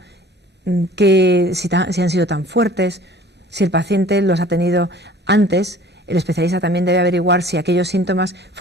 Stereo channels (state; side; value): normal; both; correlation 0.49